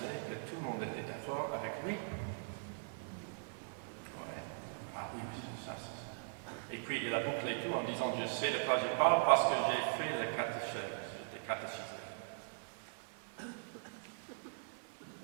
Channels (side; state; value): left; silent; 51 dB below the other